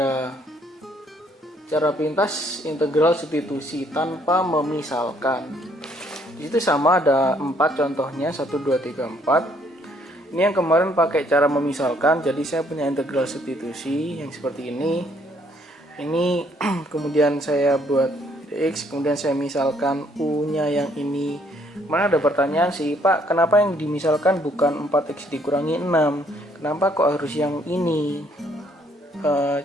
cara pintas integral substitusi tanpa memisalkan. Di situ sama ada 4 contohnya, 1, 2, 3, 4. Ini yang kemarin pakai cara memisalkan, jadi saya punya integral substitusi yang seperti ini. Ini kemudian saya buat dx, kemudian saya misalkan u-nya yang ini. Mana ada pertanyaan sih, Pak, kenapa yang dimisalkan bukan 4x dikurangi 6? Kenapa kok harus yang ini?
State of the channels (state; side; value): normal; both; correlation 0.66